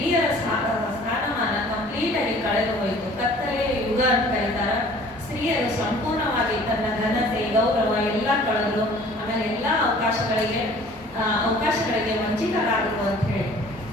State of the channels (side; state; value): both; normal; correlation 0.50